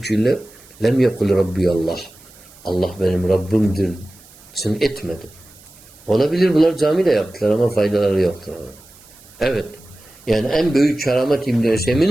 lem yekul Rabbi Allah. Allah benim Rabbimdir. Sen etmedi. Olabilir bunlar camide yaptılar ama faydaları yoktur. Evet. Yani en büyük keramet İbn-i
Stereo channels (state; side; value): noise; right; hiss, 24 dB below the sound